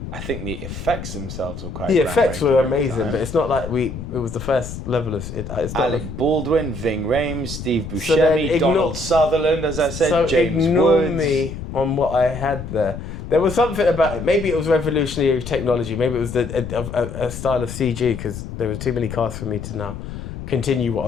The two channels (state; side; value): noise; left; rumble, 9 dB below the sound